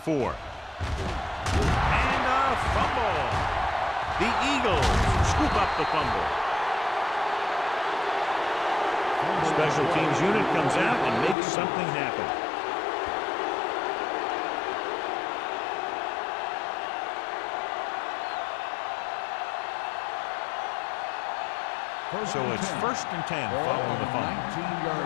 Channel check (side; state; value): right; drops out; at 11.4 s